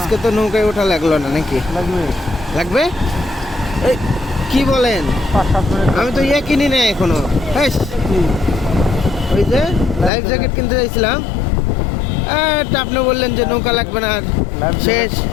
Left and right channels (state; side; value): drops out; right; at 10.1 s